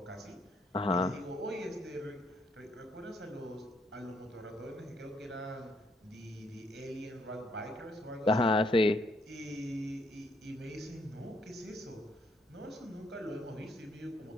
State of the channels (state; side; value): normal; both; correlation 0.71